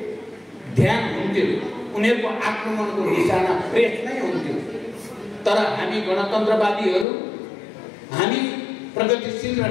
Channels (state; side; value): drops out; right; at 7.1 s